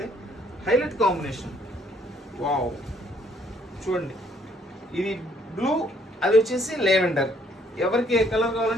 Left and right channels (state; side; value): normal; both; correlation 0.65